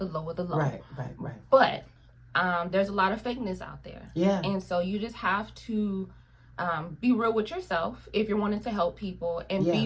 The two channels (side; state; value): both; identical; correlation 1.00